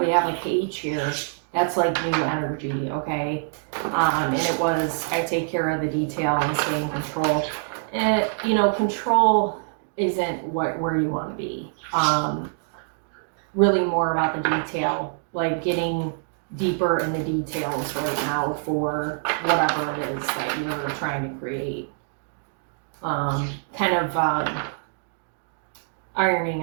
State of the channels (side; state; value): left; silent; digital silence